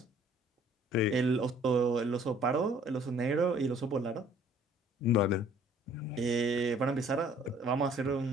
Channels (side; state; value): both; normal; correlation 0.57